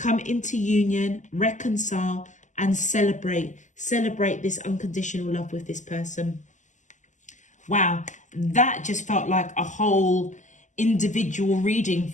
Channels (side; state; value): right; late; 0.35 ms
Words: into union, reconcile and celebrate this unconditional love with this person. Wow, that just felt like a whole individual reading